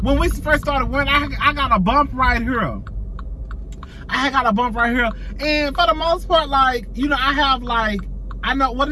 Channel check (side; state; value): both; identical; correlation 1.00